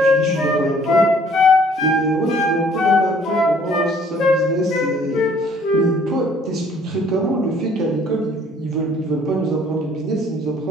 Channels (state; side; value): normal; both; correlation 0.58